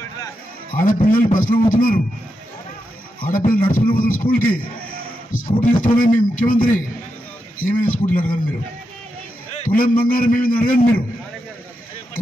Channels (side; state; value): both; normal; correlation 0.86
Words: ఆడపిల్లలు బస్సులో పోతున్నారు, ఆడపిల్లలు నడుచుకుని పోతున్నారు స్కూల్కి. స్కూటీలు ఇస్తూనే మీ ముఖ్యమంత్రి ఏమైనా స్కూటీలు అడగండి మీరు, తులం బంగారం ఏమైనా అడగండి మీరు.